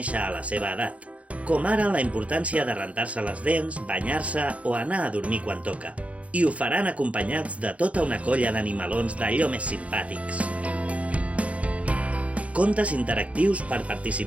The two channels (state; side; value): late; left; 0.065 ms